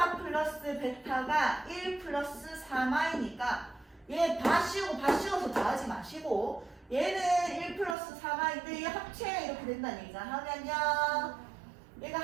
플러스 베타가 1 플러스 3i니까 얘 바 씌워서 더하지 마시고 얘는 1 플러스 3i인데 얘 합체가 이렇게 된다는 얘기잖아. 하면요 얘가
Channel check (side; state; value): left; drops out; at 8.0 s